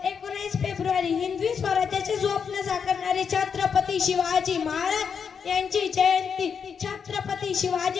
19 फेब्रुवारी हिंदवी स्वराज्याचे स्वप्न साकारणारे छत्रपती शिवाजी महाराज यांची जयंती। छत्रपती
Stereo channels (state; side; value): quieter; right; 6.6 dB